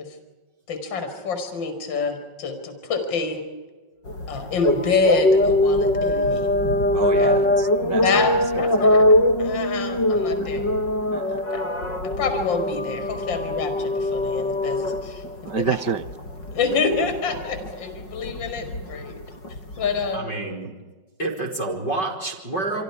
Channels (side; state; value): right; late; 5.3 ms